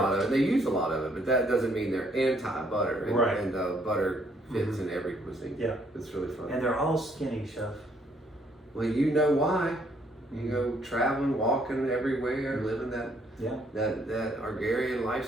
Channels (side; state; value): both; normal; correlation 0.68